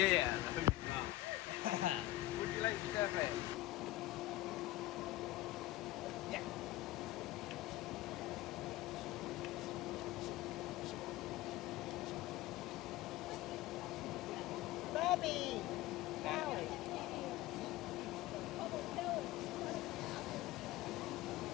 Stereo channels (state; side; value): quieter; right; 17.1 dB